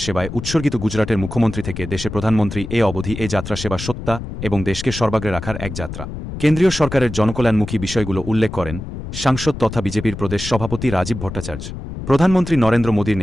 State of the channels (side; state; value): left; noise; rumble, 9 dB below the sound